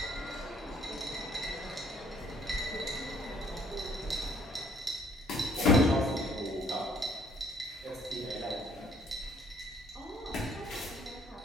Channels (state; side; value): normal; both; correlation 0.62